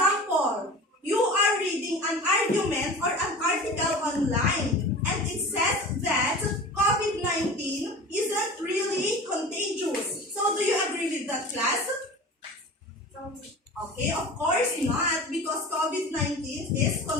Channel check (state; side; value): normal; both; correlation 0.37